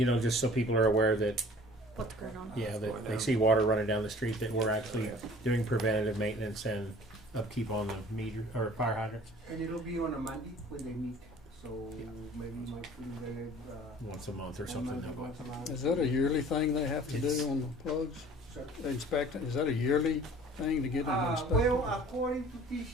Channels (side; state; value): both; normal; correlation 0.49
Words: know, just so people are aware that, What's going on? yeah, that they see water running down the street, that we're actually doing preventative maintenance and upkeep on the meter, or fire hydrants. And it'll be on a Monday when they meet, so maybe you might put it there, Once a month or one something Monday, that way. once a month. Is that a yearly thing they have to It's- do on the plugs? Sir? They inspect it, is that a yearly thing to get them inspected? Well, according to